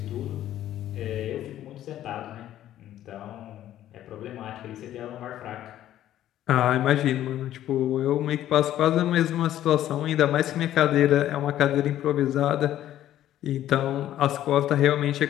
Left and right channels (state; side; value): quieter; right; 12.5 dB